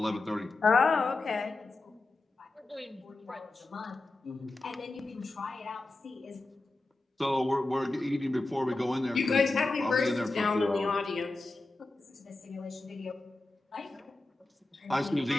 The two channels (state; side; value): quieter; right; 3.1 dB